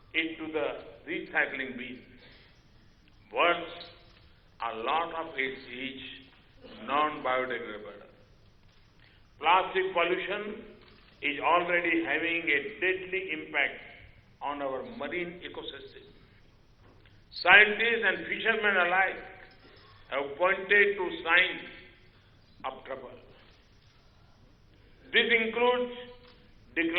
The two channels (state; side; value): identical; both; correlation 1.00